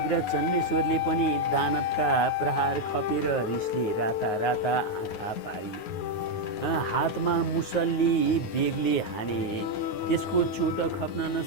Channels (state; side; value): late; right; 9.5 ms